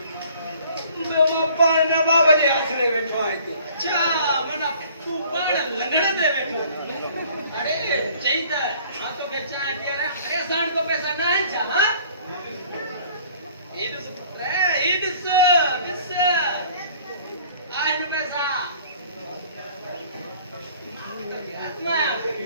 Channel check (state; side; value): inverted; both; correlation -0.54